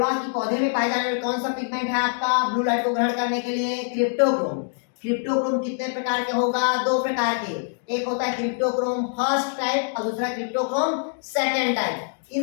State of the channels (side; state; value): right; silent; digital silence